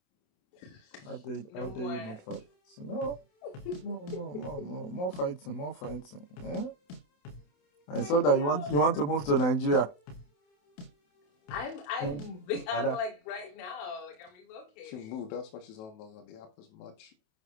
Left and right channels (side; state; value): right; late; 28 ms